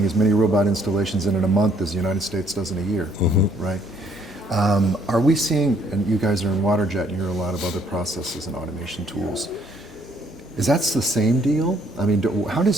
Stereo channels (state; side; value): normal; both; correlation 0.65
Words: as many robot installations in a month as the United States does in a year, right? Are we seeing, and you guys are in waterjet, and you're a lot of other processes and automation tools. Is that the same deal? I mean, how